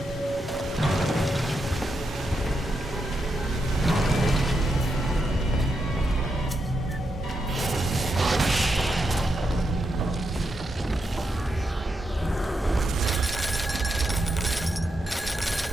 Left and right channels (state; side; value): normal; both; correlation 0.84